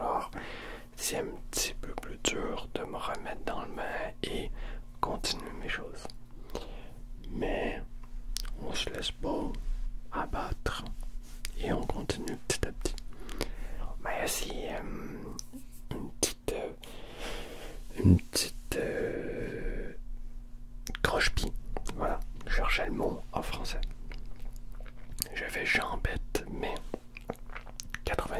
c'est un petit peu plus dur de me remettre dans le bain et continuer mes choses. Mais on se laisse pas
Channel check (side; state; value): both; identical; correlation 1.00